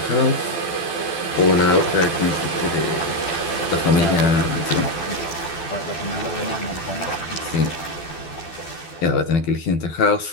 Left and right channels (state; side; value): late; right; 12 ms